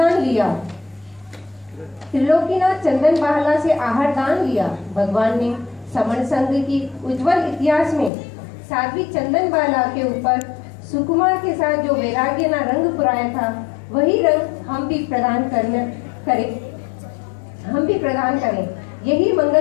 लिया। त्रिलोकीनाथ चंदन बहला से आहारदान लिया। भगवान ने समण संघ की उज्जवल इतिहास में साध्वी चंदन बाला के ऊपर सुकुमार के साथ जो वैराग्य ना रंग पुराया था, वही रंग हम भी प्रदान करें। यही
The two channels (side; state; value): right; drops out; at 8.1 s